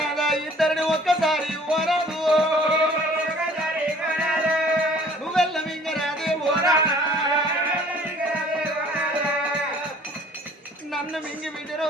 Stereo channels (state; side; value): normal; both; correlation 0.53